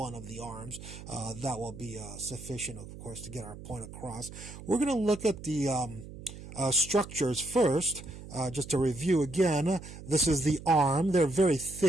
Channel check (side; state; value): right; noise; hum, 14 dB below the sound